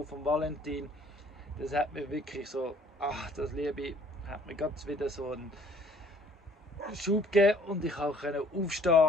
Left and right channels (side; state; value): both; normal; correlation 0.57